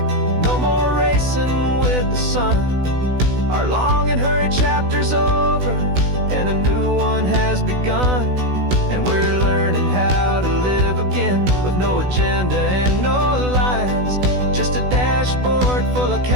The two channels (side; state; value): left; late; 16 ms